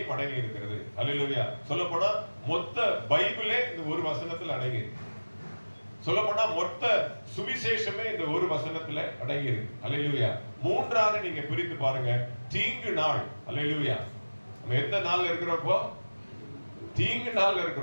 அடங்கி இருக்கிறது. அல்லேலூயா. சொல்லப்போனா மொத்த பைபிளே இந்த ஒரு வசனத்தில் அடங்கி இருக்கு. சொல்லப்போனா மொத்த சுவிசேஷமே இந்த ஒரு வசனத்துல அடங்கி இருக்கு. அல்லேலூயா. 3ஆக நீங்க பிரித்து பாருங்க. தீங்கு நாள். அல்லேலூயா. நம்ம எந்த நாள்ல இருக்கிறோம்? தீங்கு நாள்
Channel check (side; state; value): both; inverted; correlation -1.00